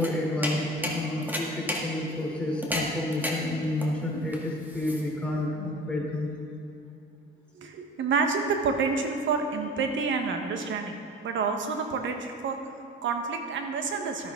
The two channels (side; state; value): both; normal; correlation 0.37